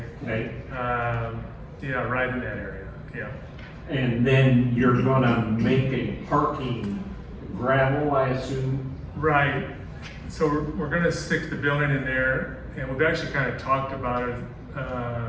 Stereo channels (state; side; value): identical; both; correlation 1.00